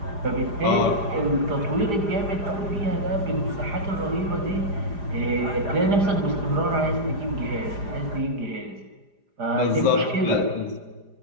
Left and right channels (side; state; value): left; late; 4.9 ms